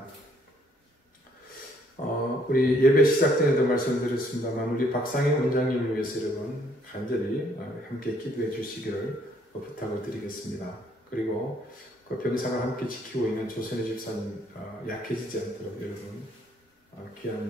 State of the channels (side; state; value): both; normal; correlation 0.66